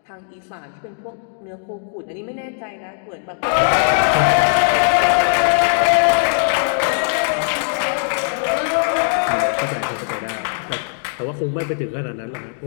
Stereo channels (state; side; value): silent; right; digital silence